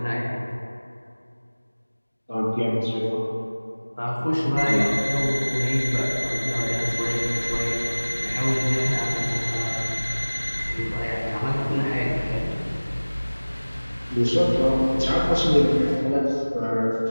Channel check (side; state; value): both; inverted; correlation -1.00